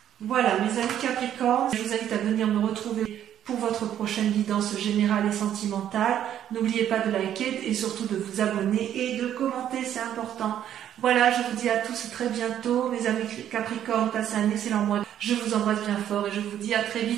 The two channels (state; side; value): quieter; left; 10.6 dB